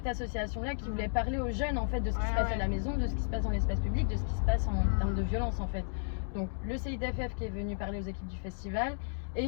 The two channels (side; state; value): right; silent; digital silence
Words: association-là qui voulait parler aux jeunes en fait de ce qui se passe à la maison, de ce qui se passe dans l'espace public, de ce qui se passe en termes de violence en fait. Donc le CIDFF qui est venu parler aux équipes du festival,